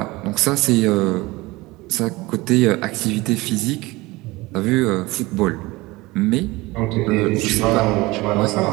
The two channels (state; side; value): quieter; left; 21.5 dB